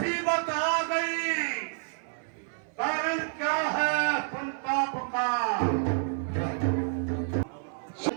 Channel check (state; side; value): silent; left; 56 dB below the other